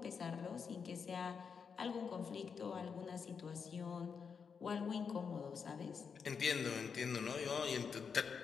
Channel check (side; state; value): right; quieter; 6.1 dB